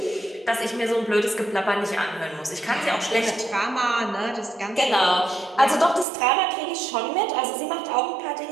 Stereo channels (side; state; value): left; drops out; at 6.1 s